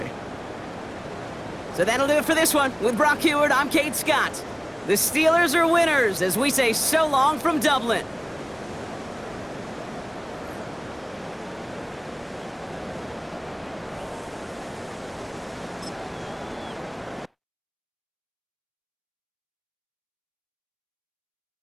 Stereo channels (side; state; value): both; identical; correlation 1.00